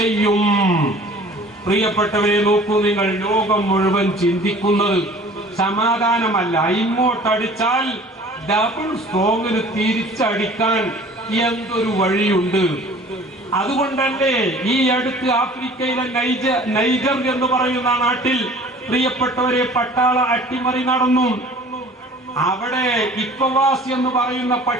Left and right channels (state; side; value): normal; both; correlation 0.48